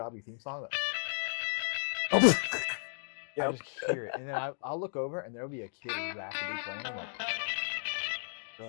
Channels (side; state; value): right; silent; digital silence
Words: theme song. Oh. I just hear it, and then I'll look over, and there'll be a kid rapidly playing. I'm like, You're